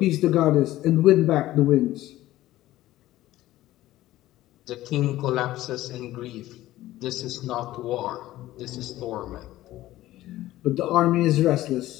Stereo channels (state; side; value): quieter; right; 15.5 dB